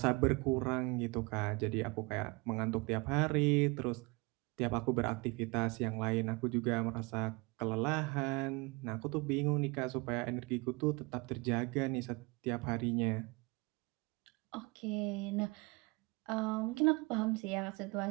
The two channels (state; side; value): quieter; left; 27.1 dB